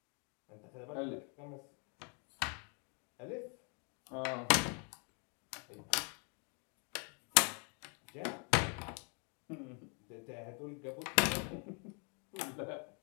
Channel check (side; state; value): right; quieter; 37.8 dB